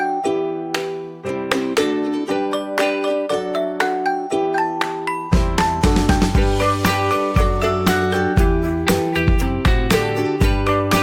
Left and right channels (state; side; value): identical; both; correlation 1.00